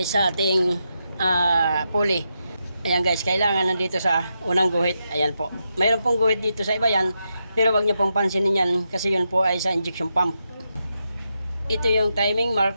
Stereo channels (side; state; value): both; inverted; correlation -0.85